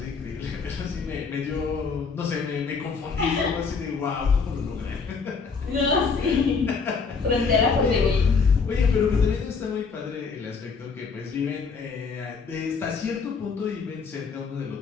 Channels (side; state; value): right; quieter; 5.1 dB